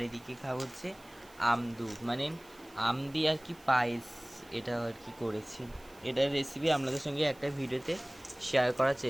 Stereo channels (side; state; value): right; noise; hiss, 25 dB below the sound